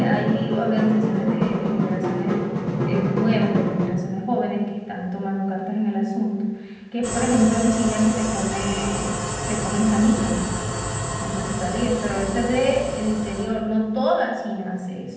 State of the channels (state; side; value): identical; both; correlation 1.00